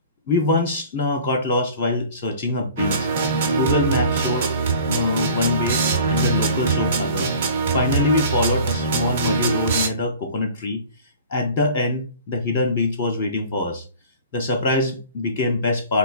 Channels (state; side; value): inverted; both; correlation -0.44